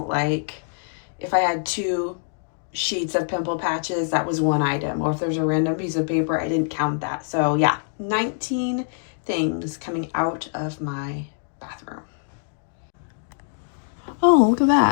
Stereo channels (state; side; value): silent; right; digital silence